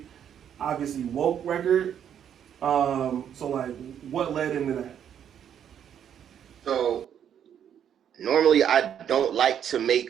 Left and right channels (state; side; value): quieter; left; 9.1 dB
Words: obviously woke record. So like, what led into that? So normally I don't like to make